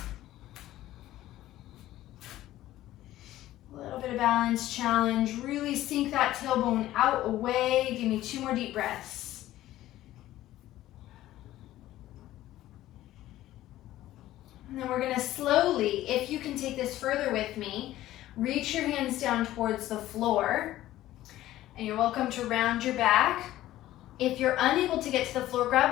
A little bit of balance challenge. Really sink that tailbone out, away. Give me 2 more deep breaths. And then we're gonna slowly, if you can take this further with me, reach your hands down towards the floor, and you're welcome to round your back. If you're unable to get to the floor,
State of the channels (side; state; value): right; quieter; 14.7 dB